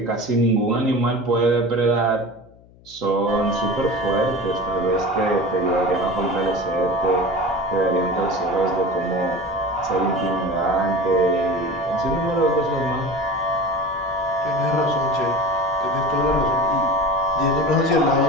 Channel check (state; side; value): noise; left; hum, 26 dB below the sound